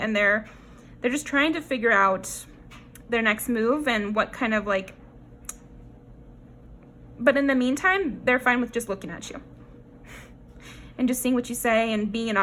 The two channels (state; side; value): identical; both; correlation 1.00